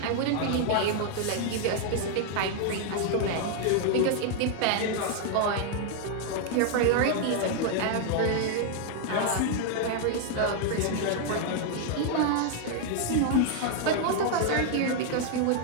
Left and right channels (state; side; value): different; both; correlation 0.00